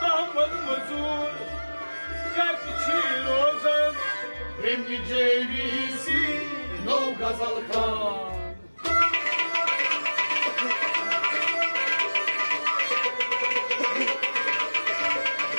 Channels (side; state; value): both; inverted; correlation -1.00